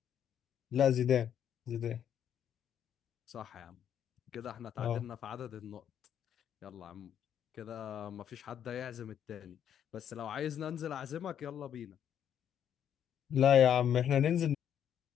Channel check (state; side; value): quieter; right; 9.4 dB